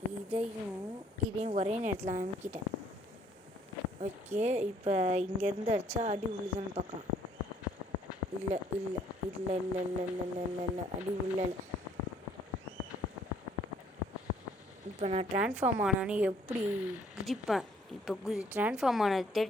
இதையும் ஒரே நேரத்தில் அமுக்கிட்டேன். ஓகே, இப்போ இங்கேருந்து அடித்தா அடி விழுதுன்னு பார்க்கலாம். இல்லை இல்லை இல்லை இல்லை இல்லை இல்லை இல்லை இல்லை இல்லை அடி இல்லை. இப்போ நான் ட்ரான்ஸ்ஃபார்ம் ஆனானே எப்படி குதிப்பேன். இப்போ ட்ரான்ஸ்ஃபார்ம் ஆனது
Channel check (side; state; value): both; normal; correlation 0.63